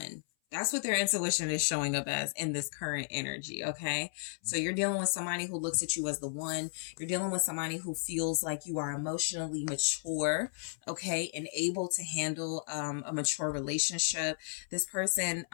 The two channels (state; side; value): silent; right; 55 dB below the other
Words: That's what their intuition is showing up as in this current energy, okay? So you're dealing with somebody who looks at you as the one. You're dealing with somebody who feels like you are emotionally mature, okay, and able to handle a mature relationship. This person